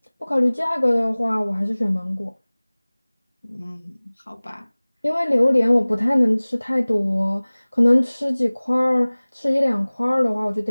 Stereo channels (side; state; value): both; inverted; correlation -1.00